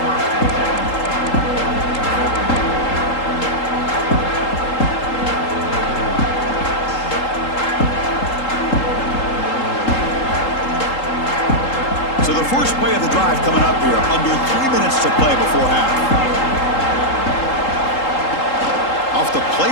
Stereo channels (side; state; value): right; late; 3.8 ms